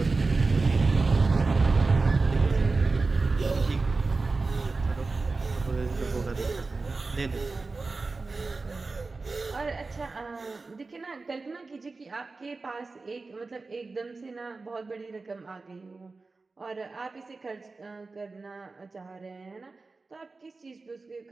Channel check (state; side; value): quieter; left; 3.8 dB